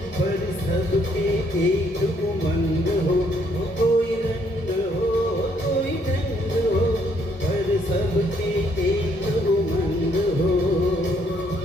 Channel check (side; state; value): both; normal; correlation 0.69